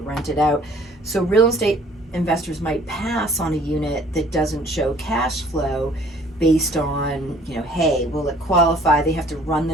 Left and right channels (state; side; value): normal; both; correlation 0.55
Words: rent it out. So real estate investors might pass on a unit that doesn't show cash flow based on, hey, will it qualify? They have to run